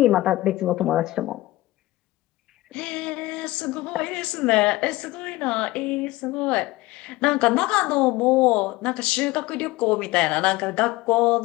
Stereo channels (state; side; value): quieter; right; 18.8 dB